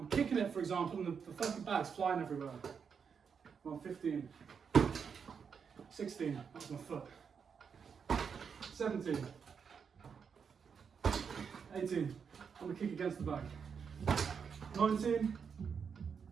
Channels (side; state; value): left; quieter; 6.5 dB